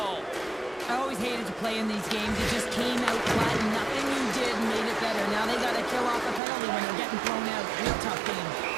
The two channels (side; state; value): left; drops out; at 6.4 s